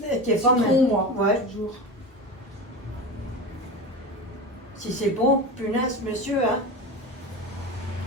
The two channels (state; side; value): normal; both; correlation 0.26